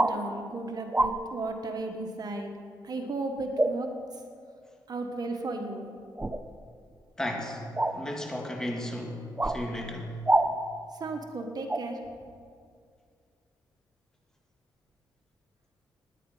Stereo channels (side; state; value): both; normal; correlation 0.83